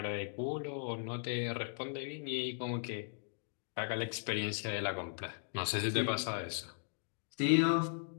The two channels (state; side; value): silent; right; digital silence